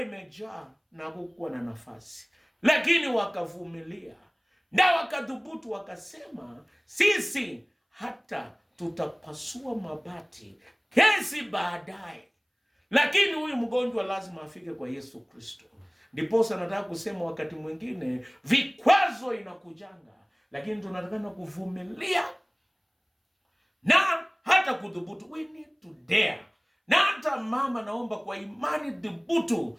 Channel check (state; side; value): identical; both; correlation 1.00